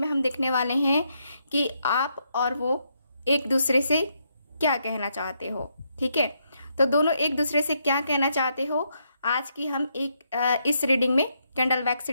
हम देखने वाले हैं कि आप और वो एक दूसरे से क्या कहना चाहते हो। ठीक है, तो दोनों एक दूसरे से क्या कहना चाहते हो आज की हम इस रीडिंग में, कैंडल वैक्स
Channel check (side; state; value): both; inverted; correlation -0.78